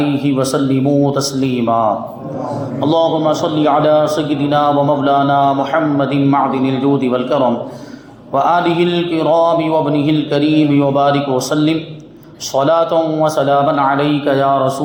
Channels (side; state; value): both; identical; correlation 1.00